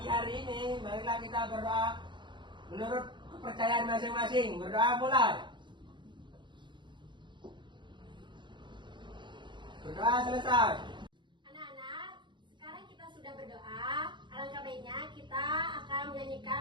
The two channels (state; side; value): late; left; 0.23 ms